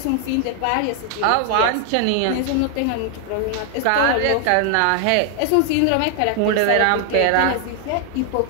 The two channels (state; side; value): different; both; correlation 0.00